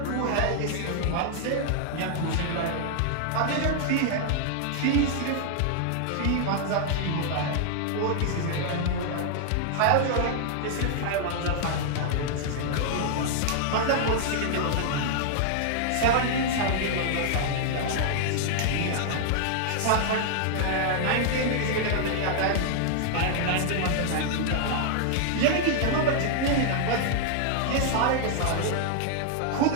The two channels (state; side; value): different; both; correlation -0.01